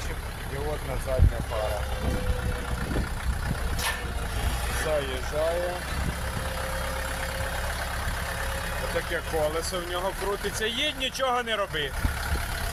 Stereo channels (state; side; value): identical; both; correlation 1.00